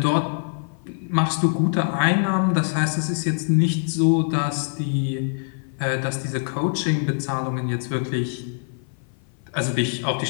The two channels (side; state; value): right; silent; 56 dB below the other